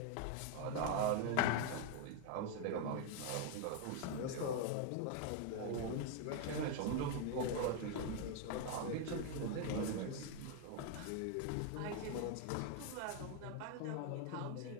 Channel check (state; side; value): different; both; correlation 0.00